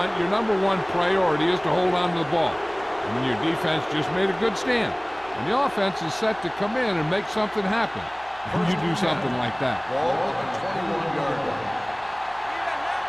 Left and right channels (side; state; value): right; noise; hum, 24 dB below the sound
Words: your number one priority is to hold on to the ball. And when your defense just made a good stand, and the offense is set to come in and make something happen, and you do something like that. Ball on the 21-yard line.